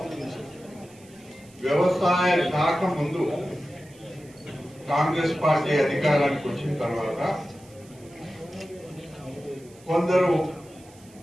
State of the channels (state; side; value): noise; right; hiss, 25 dB below the sound